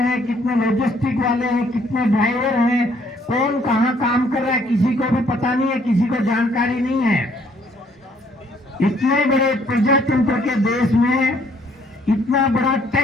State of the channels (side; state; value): both; normal; correlation 0.64